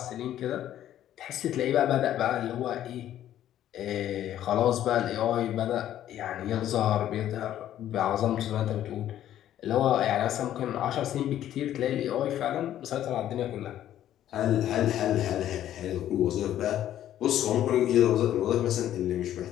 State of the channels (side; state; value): right; quieter; 11.8 dB